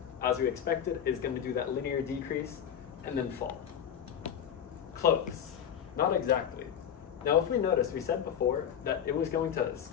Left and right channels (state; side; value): quieter; right; 8.8 dB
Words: as we expected, is going to do that linear decrease and then fall. Close. Not exactly. Now, if we notice, we said before that it was going to